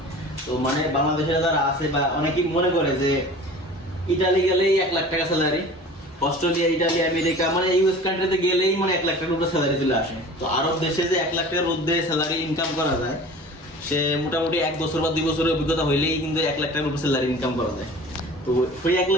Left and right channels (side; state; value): both; normal; correlation 0.41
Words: তো মানে বাংলাদেশে যারা আছে বা অনেকেই মনে করে যে ইটালি গেলেই 1 লাখ টাকা স্যালারি, অস্ট্রেলিয়া, ইটালি, আমেরিকা মানে ইউএস কান্ট্রিতে গেলেই মানে 1 লাখ টাকার উপরে স্যালারি চলে আসে। তো আরব দেশে যে 1 লাখ টাকার মধ্যে স্যালারি ইনকাম করা যায়, সে মোটামুটি 1 বছর বা 2 বছরের অভিজ্ঞতা হইলেই কিন্তু 1 লাখ টাকার উপরে স্যালারি ইনকাম করা যায়। তো ওই 1